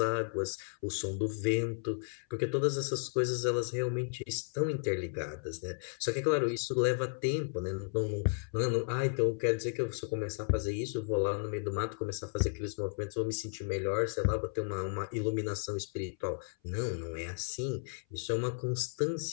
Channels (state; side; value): silent; right; 55 dB below the other